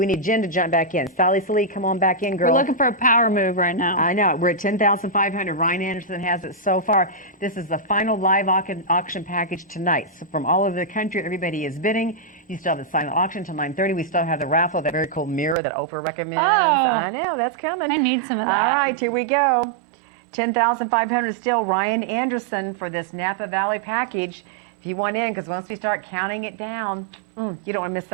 need Jen to jump back in. Sally Salee, come on back in, girl. We're looking for a power move right now. I know. We're at $10,500. Ryan Anderson has it so far. This is the final live auction package tonight. So from all over the country, everybody is bidding. You still have the silent auction till 9:30. We still have the raffle, that very cool mirror that Oprah recommends. Oh, I know, that's coming. I need some of that. All right, here we go. $10,500 still. Ryan Anderson for this Napa Valley package. If you want in, because once we start counting it down, you don't want to miss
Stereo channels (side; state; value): left; drops out; at 15.6 s